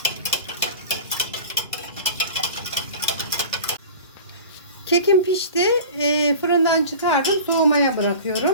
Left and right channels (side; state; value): both; inverted; correlation -0.37